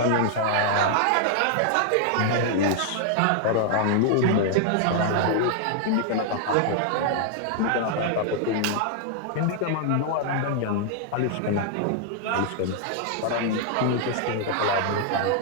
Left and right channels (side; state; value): both; different; correlation -0.01